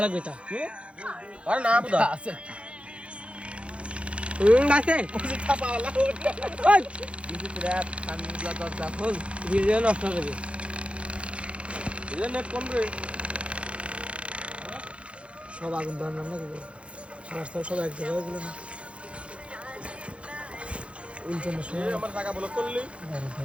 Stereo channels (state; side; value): late; left; 0.060 ms